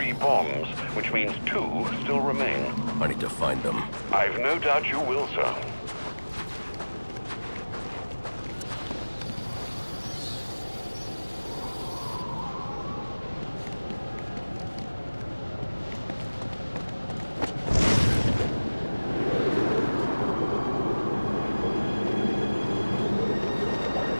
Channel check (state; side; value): inverted; both; correlation -1.00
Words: bombs, which means 2 still remain. I need to find them. I've no doubt you will, sir.